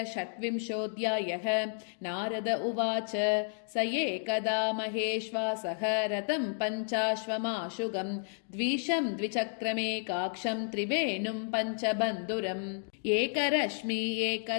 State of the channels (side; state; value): right; silent; digital silence